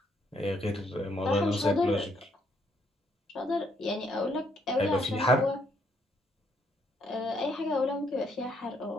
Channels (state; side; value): normal; both; correlation 0.71